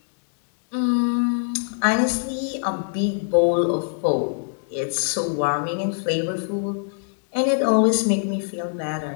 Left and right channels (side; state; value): right; silent; digital silence